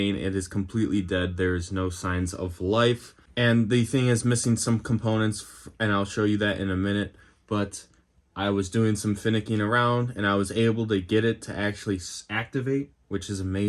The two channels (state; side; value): identical; both; correlation 1.00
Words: it is completely dead, there is no signs of life, and the thing is missing some components, and I'll show you that in a minute, but I was doing some finicking around and I was able to get it to actually activate, which is